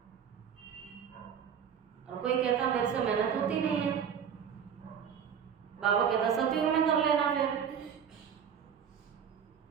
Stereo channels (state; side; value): quieter; left; 7.9 dB